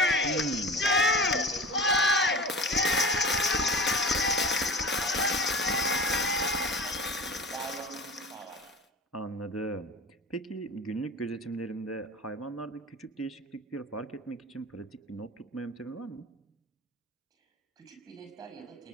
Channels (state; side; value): normal; both; correlation 0.35